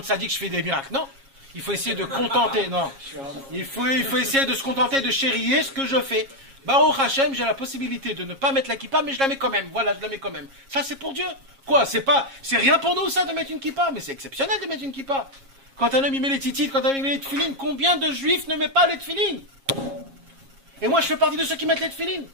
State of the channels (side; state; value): left; late; 7.3 ms